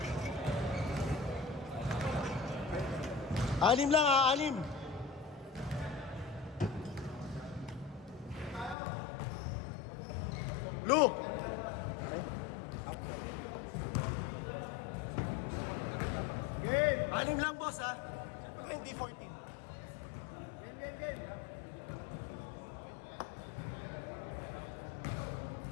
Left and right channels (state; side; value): drops out; right; at 8.8 s